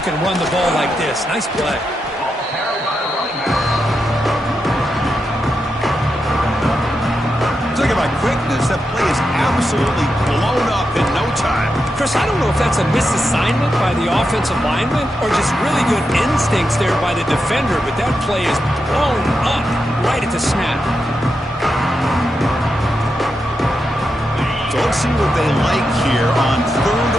can run the ball like this. Nice play. Talking about quickness, that play is absolutely blown up in no time. Chris, I don't know if that's a misassignment by the offensive lineman or just really good instincts there by the defender, but that play is blown up right at the snap. So let's see what they like here on 3rd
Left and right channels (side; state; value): both; normal; correlation 0.86